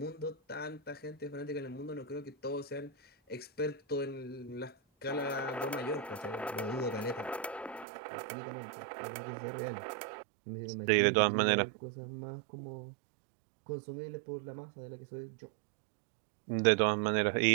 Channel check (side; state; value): left; drops out; at 7.9 s